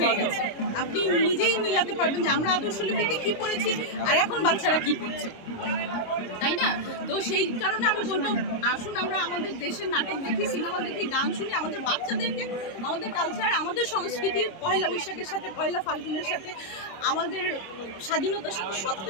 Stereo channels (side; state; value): right; late; 26 ms